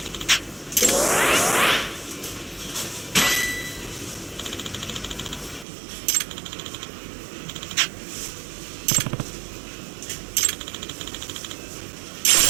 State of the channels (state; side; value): drops out; left; at 5.7 s